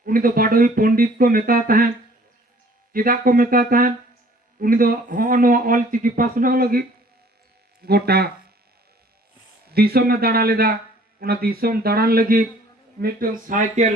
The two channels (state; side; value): normal; both; correlation 0.55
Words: उनी दो बाडोई पंडित को मेता ताहे चिदा को मेता ताहे उनी दो होनो ऑलचिकी पासना लगी गोटा दिसोम में दाड़ा लेदा उना दिसोम दाड़ान लगी मिटन